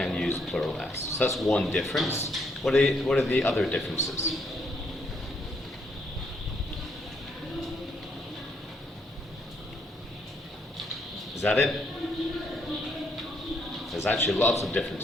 use plural S. So that's one difference. What are the other differences? Is that it? There's actually lots of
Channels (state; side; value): normal; both; correlation 0.72